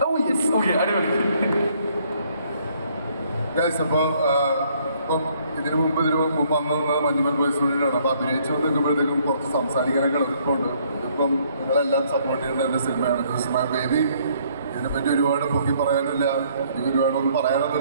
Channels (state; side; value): inverted; both; correlation -0.65